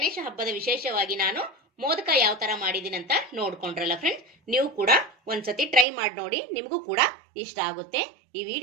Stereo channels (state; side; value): drops out; left; at 5.9 s